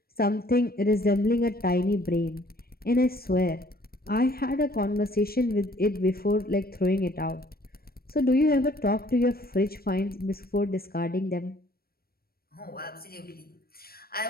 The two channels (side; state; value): right; late; 0.44 ms